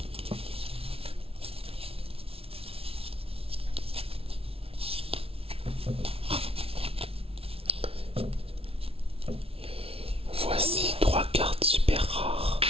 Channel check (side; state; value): left; late; 0.27 ms